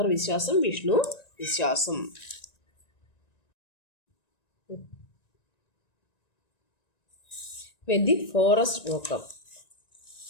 വിശ്വാസം, വിഷ്ണു വിശ്വാസം. വെൻ ദി ഫോറസ്റ്റ് വോക്കപ്പ്,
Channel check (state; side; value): late; right; 1.9 ms